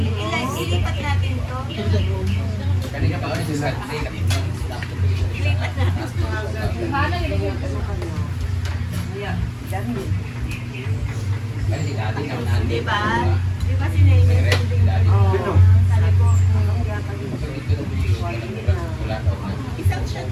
ilipat natin to. Kanina pa kami sa Diba? Diba sinayos? Isang shot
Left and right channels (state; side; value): identical; both; correlation 1.00